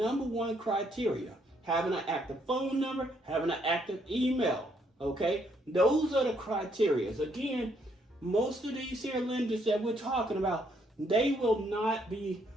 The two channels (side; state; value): both; normal; correlation 0.71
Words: criteria. Having an active phone number, having an active email, okay? Those are the criteria. Again, most of these here lenders that we're talking about, they will not be